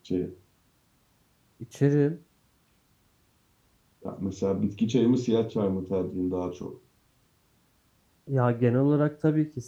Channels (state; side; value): identical; both; correlation 1.00